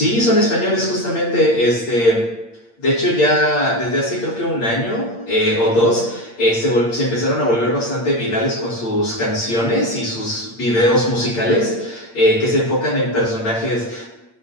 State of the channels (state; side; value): late; right; 8.7 ms